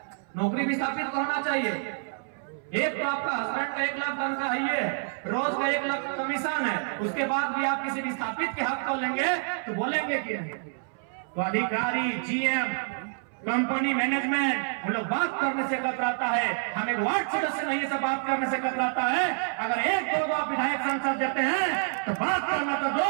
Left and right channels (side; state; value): left; silent; 59 dB below the other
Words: नौकरी विस्थापित को होना चाहिए। एक तो आपका हस्बैंड का 1 लाख तनख्वाह है, ये रोज का 1 लाख कमीशन है, उसके बाद भी आप किसी विस्थापित के हक को लेंगे तो बोलेंगे कि नहीं। तो अधिकारी, जीएम, कंपनी मैनेजमेंट हम लोग बात करने से कतराता है। हम एक वार्ड सदस्य नहीं से बात करने से कतराता है। अगर एक दो आप विधायक सांसद देते हैं तो बात करना तो